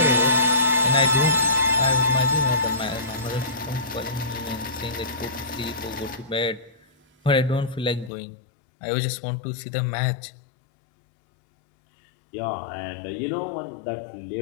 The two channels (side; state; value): right; drops out; at 8.1 s